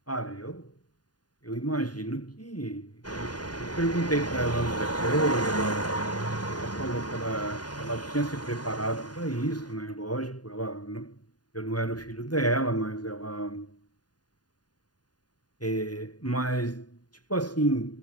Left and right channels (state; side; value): late; right; 0.70 ms